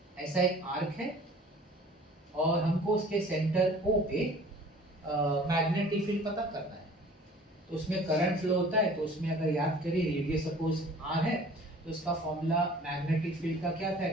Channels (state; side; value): normal; both; correlation 0.49